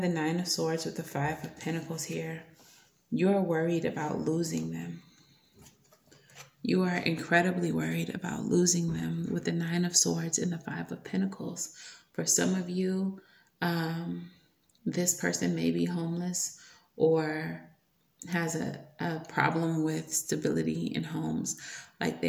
Nine of Swords with the Five of Pentacles here. You're worried about losing them. You are incredibly worried about losing them with the Nine of Swords and the Five of Pentacles. For some of you, this person may be homeless or has a problem with stability in homes. Like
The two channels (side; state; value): both; identical; correlation 1.00